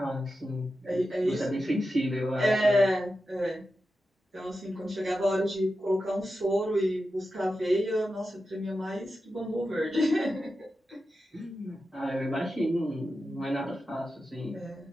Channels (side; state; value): both; normal; correlation 0.91